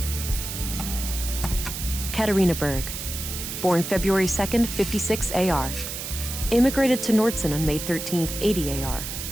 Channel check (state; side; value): noise; right; hiss, 6 dB below the sound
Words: Katarina Berg. Born February 2nd, 56 AR. Immigrated to Nordson on May 13th, 80 AR.